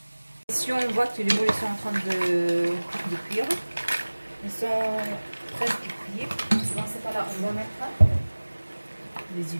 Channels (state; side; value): inverted; both; correlation -1.00